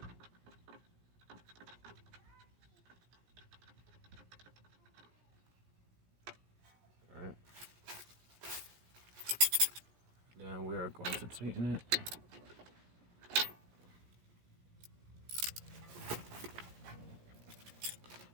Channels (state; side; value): late; left; 17 ms